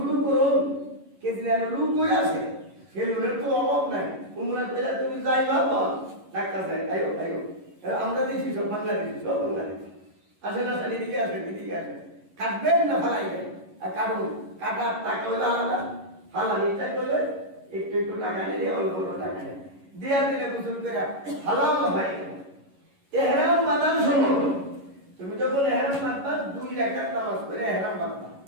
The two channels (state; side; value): late; left; 11 ms